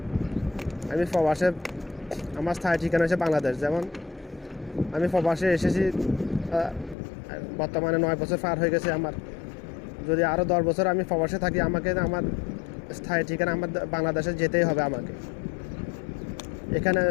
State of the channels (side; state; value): right; drops out; at 7.0 s